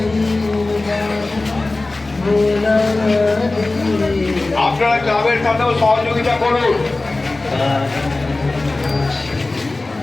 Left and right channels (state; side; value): quieter; right; 3.1 dB